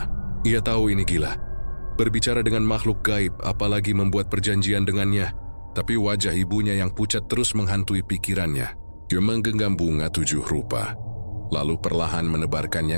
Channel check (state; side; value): inverted; both; correlation -1.00